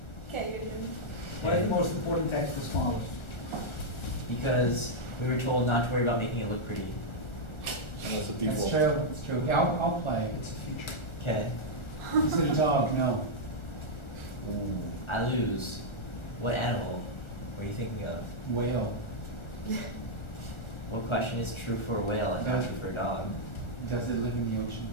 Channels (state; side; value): late; right; 1.4 ms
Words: Okay, you're doing. Why is the most important text the smallest? Because we were told not to worry about making it look pretty. And that's the That's default. true, it's true. Yeah, I'll play, it's a future. Okay. Is it a dog? No. I lose. What animal were you thinking of? Whale. What question is true for a whale and not true for a dog? Does it live in the ocean?